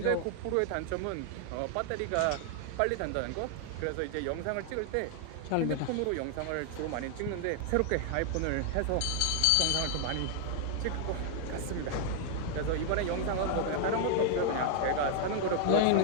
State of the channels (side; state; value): both; different; correlation 0.00